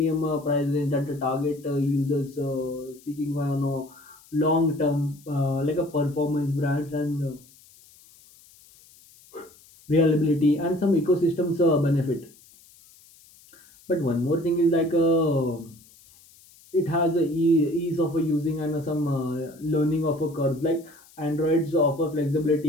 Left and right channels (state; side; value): noise; left; hiss, 26 dB below the sound